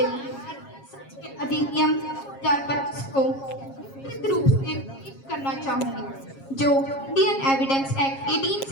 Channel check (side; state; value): right; late; 7.4 ms